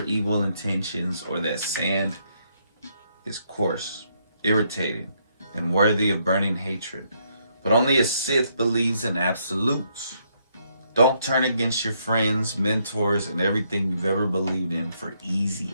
intentions, or that sand is coarse, irritating, and worthy of burning hatred. But only a Sith believes in absolutes. Don't turn against your friends, mentors, and everything you've ever believed in for easy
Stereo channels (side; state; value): both; inverted; correlation -0.74